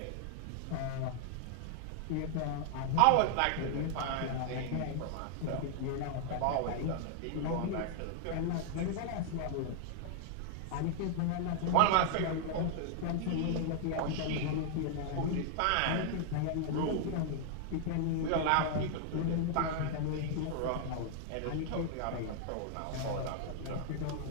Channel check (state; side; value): different; both; correlation 0.00